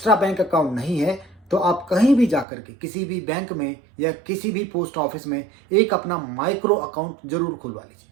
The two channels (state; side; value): drops out; left; at 2.5 s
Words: बैंक अकाउंट नहीं है तो आप कहीं भी जाकर के किसी भी बैंक में या किसी भी पोस्ट ऑफिस में एक अपना माइक्रो अकाउंट जरूर खुलवा लीजिए।